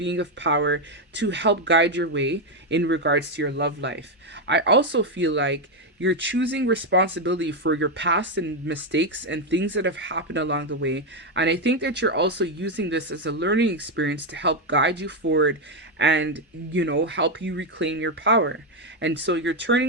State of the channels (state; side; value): normal; both; correlation 0.05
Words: of power to help guide your way in regards to your love life. I also feel like you're choosing responsibility for your past and mistakes and things that have happened along the way. And I think that you're also using this as a learning experience to help guide you forward and, you know, help you reclaim your power. And so you're